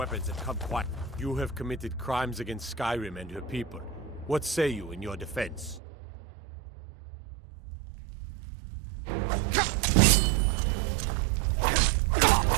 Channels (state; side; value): drops out; left; at 5.8 s